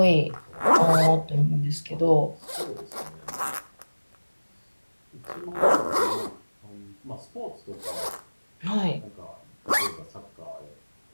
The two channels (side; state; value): both; inverted; correlation -1.00